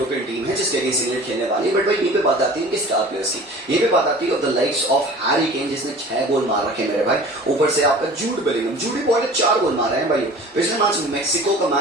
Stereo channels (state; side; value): normal; both; correlation 0.42